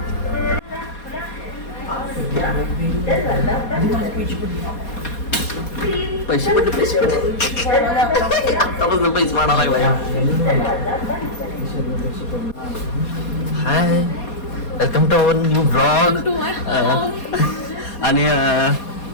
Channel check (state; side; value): late; right; 4.2 ms